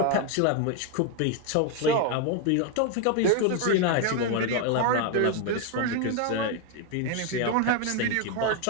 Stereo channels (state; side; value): different; both; correlation 0.01